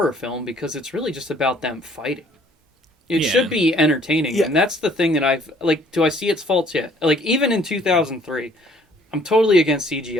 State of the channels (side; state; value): both; normal; correlation 0.59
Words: film because it's really just about them fighting. It Yeah. should be entertaining, Yeah. and that's the thing that I've like. Do I see its faults yet? Like even in 2003, I'm totally against